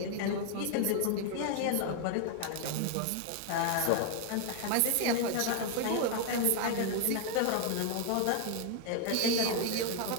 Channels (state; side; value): different; both; correlation 0.00